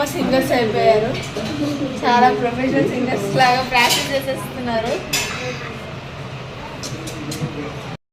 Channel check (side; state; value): both; identical; correlation 1.00